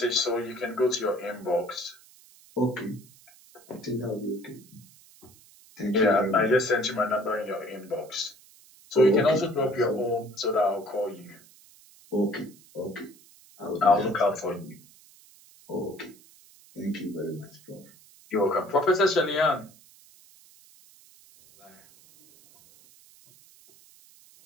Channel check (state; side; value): noise; right; hiss, 25 dB below the sound